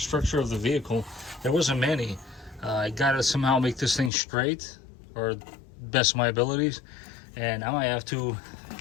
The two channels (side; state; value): right; drops out; at 4.1 s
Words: of the vehicle, there wasn't many. I gotta somehow make this thing straight, or best of my abilities, and I might have to,